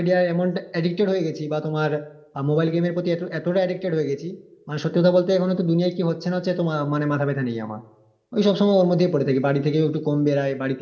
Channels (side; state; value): both; identical; correlation 1.00